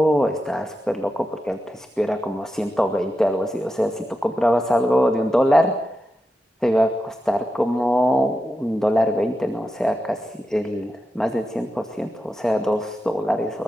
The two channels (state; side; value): normal; both; correlation 0.89